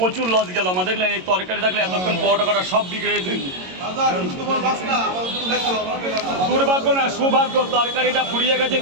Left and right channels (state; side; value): late; left; 22 ms